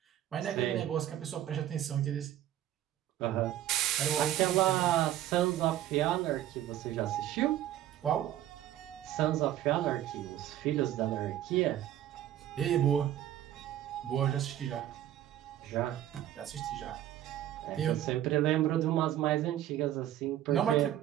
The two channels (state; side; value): quieter; left; 12.3 dB